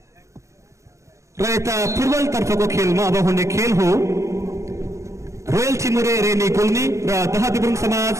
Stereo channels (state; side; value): late; left; 0.14 ms